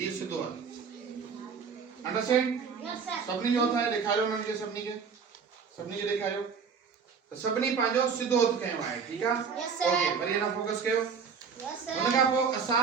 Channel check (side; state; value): left; quieter; 6.0 dB